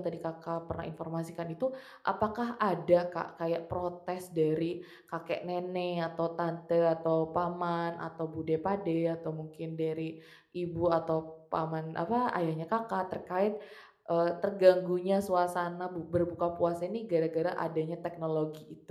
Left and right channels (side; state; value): both; identical; correlation 1.00